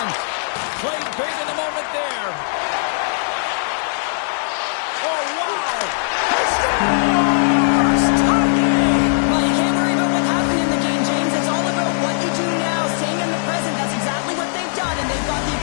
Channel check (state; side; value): silent; right; digital silence